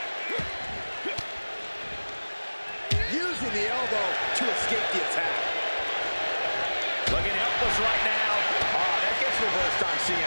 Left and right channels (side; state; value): both; inverted; correlation -1.00